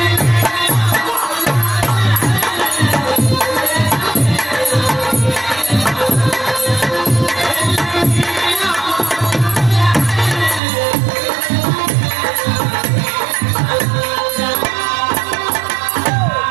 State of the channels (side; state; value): left; drops out; at 10.6 s